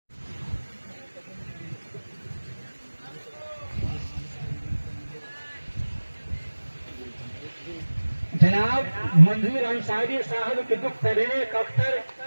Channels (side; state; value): both; inverted; correlation -1.00